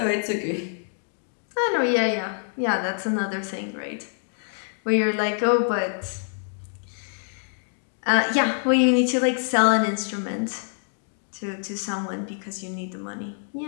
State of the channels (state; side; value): silent; right; digital silence